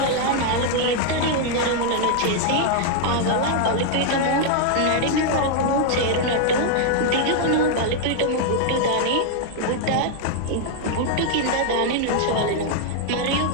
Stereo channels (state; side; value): different; both; correlation 0.00